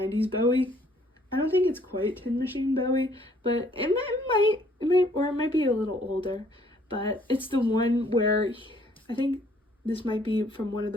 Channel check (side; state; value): both; normal; correlation 0.62